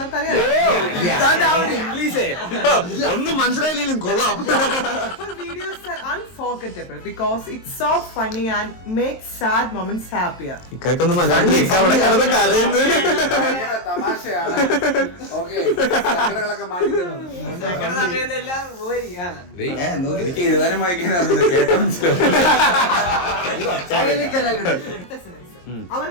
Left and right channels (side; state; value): right; late; 23 ms